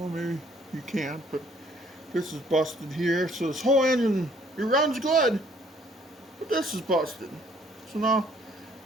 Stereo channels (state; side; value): normal; both; correlation 0.61